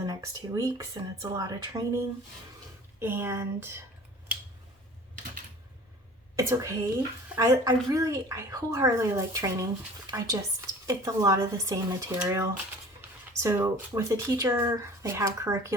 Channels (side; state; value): both; normal; correlation 0.45